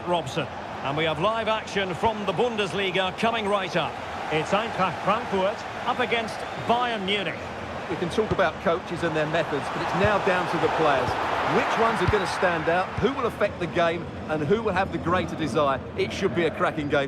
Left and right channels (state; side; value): identical; both; correlation 1.00